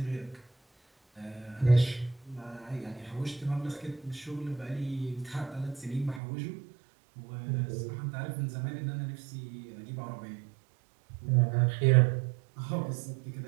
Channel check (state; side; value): drops out; left; at 6.2 s